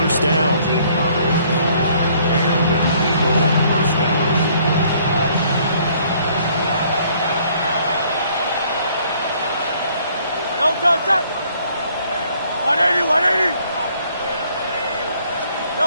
down. And an Eagle first down. Elton set. 180.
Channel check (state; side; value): inverted; both; correlation -0.62